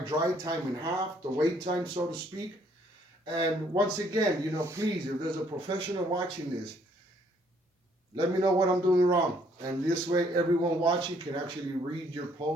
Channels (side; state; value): both; normal; correlation 0.65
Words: time in half, the wait time, so to speak. And once again, you know, please, if there's a professional watching this, let me know what I'm doing wrong. And this way, everyone watching can actually read your